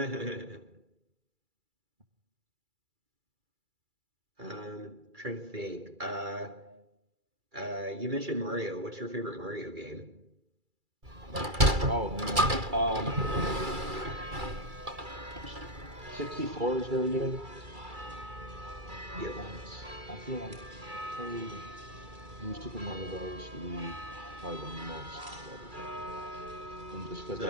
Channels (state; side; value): late; left; 2.3 ms